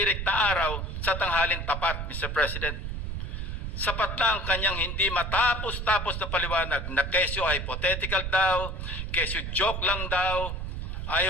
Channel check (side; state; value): right; noise; rumble, 4 dB below the sound